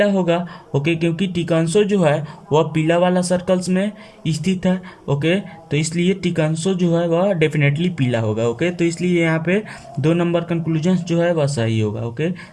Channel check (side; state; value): both; identical; correlation 1.00